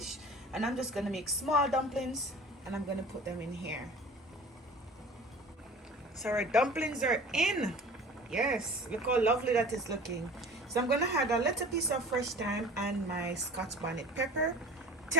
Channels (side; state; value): both; normal; correlation 0.43